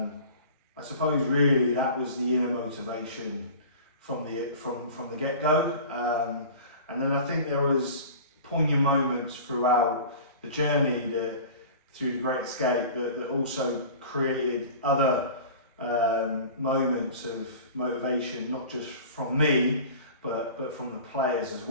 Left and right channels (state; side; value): inverted; both; correlation -0.39